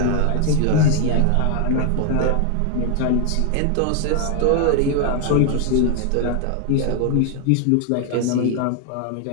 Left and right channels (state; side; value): different; both; correlation 0.00